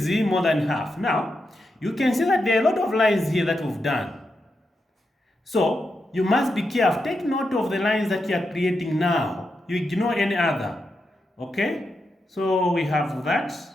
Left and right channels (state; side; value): normal; both; correlation 0.86